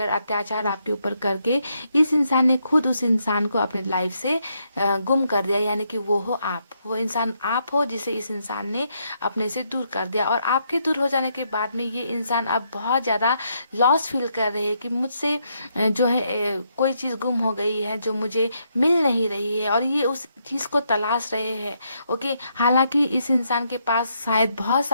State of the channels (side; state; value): both; inverted; correlation -0.77